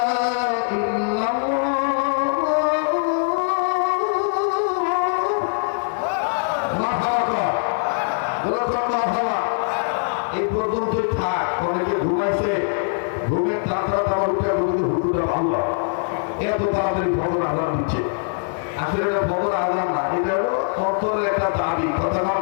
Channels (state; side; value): silent; right; digital silence